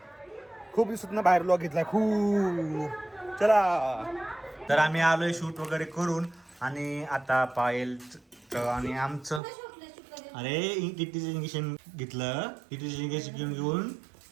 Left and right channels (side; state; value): left; drops out; at 9.4 s